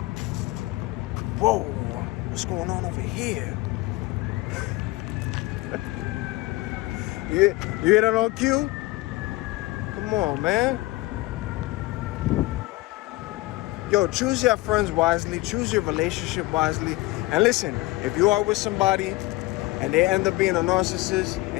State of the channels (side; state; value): right; quieter; 20.5 dB